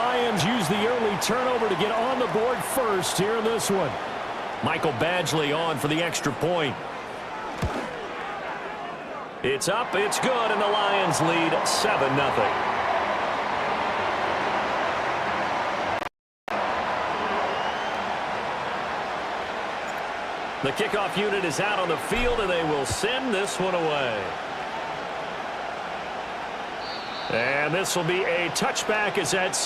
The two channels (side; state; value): both; identical; correlation 1.00